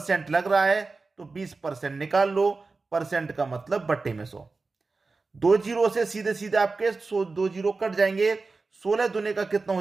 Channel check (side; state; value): left; quieter; 3.9 dB